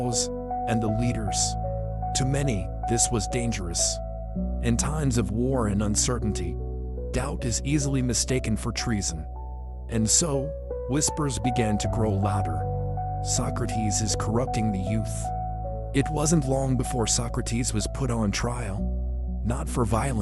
and the leaders. To many, this was dangerous. In times of war and uncertainty, doubt is easily mistaken for treason. And so, whispers began to grow louder. Socrates is corrupting the youth. It wasn't long before Socrates was put on trial, not for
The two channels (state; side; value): identical; both; correlation 1.00